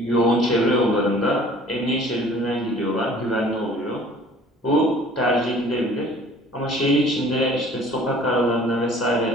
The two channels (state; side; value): normal; both; correlation 0.50